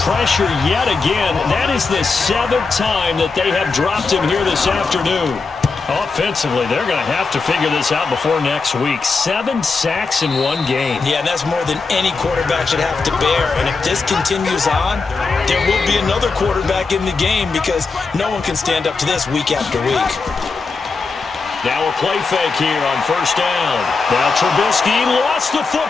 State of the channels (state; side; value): quieter; right; 4.4 dB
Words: pressure yet again. That is the 7th time that they have dropped him here this afternoon. Offensively, they're going to have to figure this out before next week. 7 sacks in one game. Yeah, and that's more than any quarterback should have to bear. And if this continues on, there will be another quarterback in the game because no one can stand up to this week after week. Now a play fake here on first down. Now Trubisky lost the